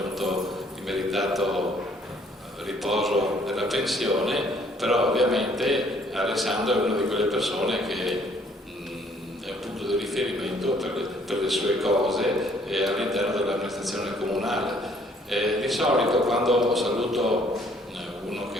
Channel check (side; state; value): both; normal; correlation 0.62